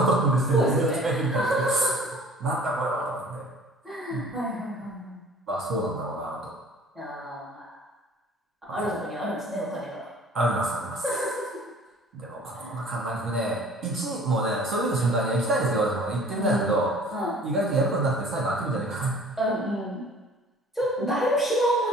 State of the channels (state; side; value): normal; both; correlation 0.49